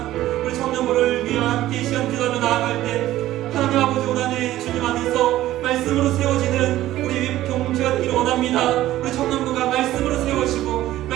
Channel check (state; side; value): quieter; left; 14.6 dB